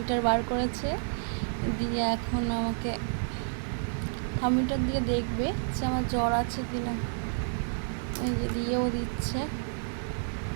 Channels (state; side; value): silent; left; digital silence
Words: বার করেছে, দিয়ে এখন আমাকে থার্মোমিটার দিয়ে দেখবে যে আমার জ্বর আছে কি না। এই যে দিয়েও দিচ্ছে।